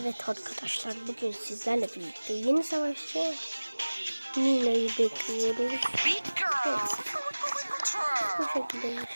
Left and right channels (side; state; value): both; inverted; correlation -1.00